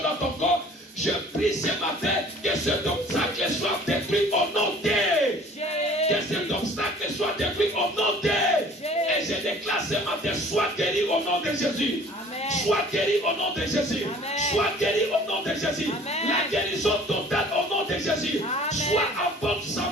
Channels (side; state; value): both; normal; correlation 0.50